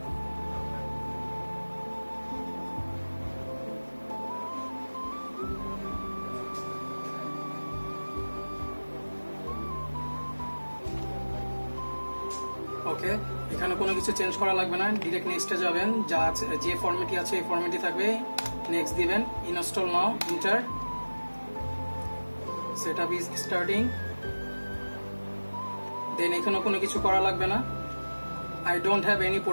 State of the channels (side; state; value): both; inverted; correlation -1.00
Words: ওকে, এখানে কোনো কিছু চেঞ্জ করা লাগবে না, ডিরেক্ট নেক্সটে যাবেন। যা আছে, যে ফরম্যাটই আছে এই ফরম্যাটই থাকবে। নেক্সট দিবেন, install now, enter, setup is starting. Then এখানে কোনো কিছু করা লাগবে না। I don't have any